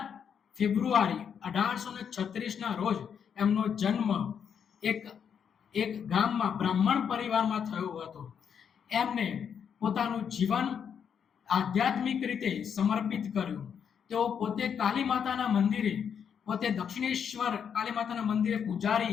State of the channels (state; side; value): quieter; right; 7.6 dB